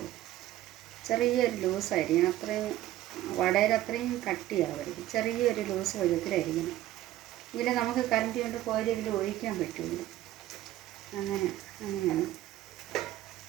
ചെറിയൊരു ലൂസായിരിക്കണം. അത്രയും വടയിൽ അത്രയും കട്ടിയാവരുത്. ചെറിയൊരു ലൂസ് പരുവത്തിലായിരിക്കണം. എങ്കിലേ നമുക്ക് കരണ്ടി കൊണ്ട് കോരി ഇതിൽ ഒഴിക്കാൻ പറ്റുള്ളൂ. അങ്ങനെയാണ്.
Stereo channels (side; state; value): left; quieter; 14.3 dB